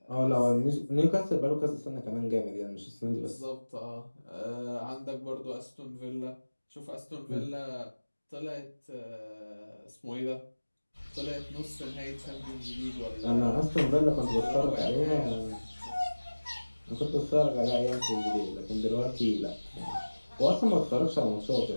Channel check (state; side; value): inverted; both; correlation -1.00